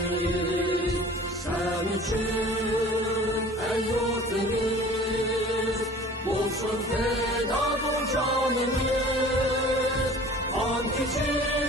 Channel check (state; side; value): normal; both; correlation 0.45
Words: Sen için ey yurtimiz bo'lsin feda bu canimiz. Qon